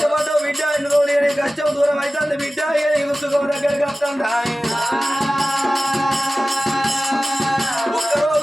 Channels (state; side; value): normal; both; correlation 0.96